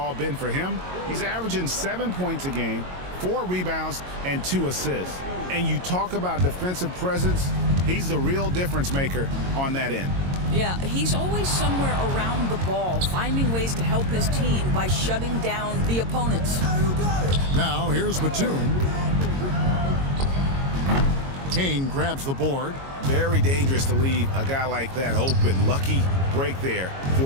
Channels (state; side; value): late; left; 22 ms